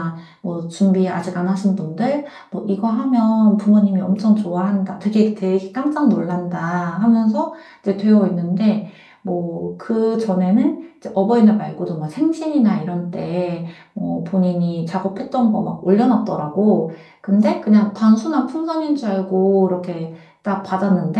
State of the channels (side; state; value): both; identical; correlation 1.00